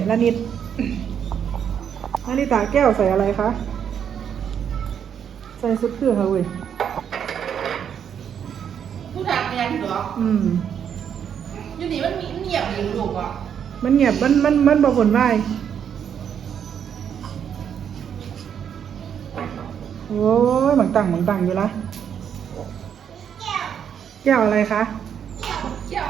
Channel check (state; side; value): quieter; left; 8.3 dB